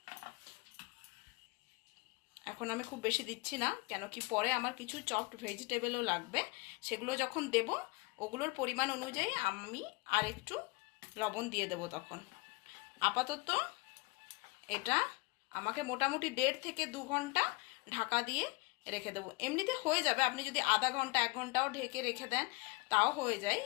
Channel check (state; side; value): quieter; right; 26.1 dB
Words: এখন আমি খুব বেশি দিচ্ছি না, কেন কি পরে আমার কিছু চপড ভেজিটেবলও লাগবে, সেগুলো যখন দেব ওগুলোর পরিমাণ অনুযায়ী আমি আর একটু লবণ দিয়ে দেব তখন। আপাতত এটা আমাকে মোটামুটি 1.5 থেকে 2 ঘন্টা ঢাকা দিয়ে রেখে দেবো। এমনিতে হয়ে যাবে, আপনি যদি আধা ঘন্টা 1 ঘন্টাও ঢেকে রেখে দেন তাও হয়ে যায়।